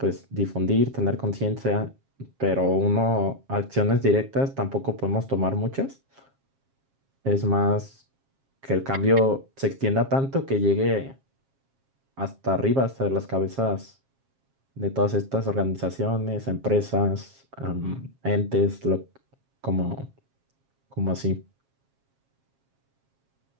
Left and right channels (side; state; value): left; late; 7.4 ms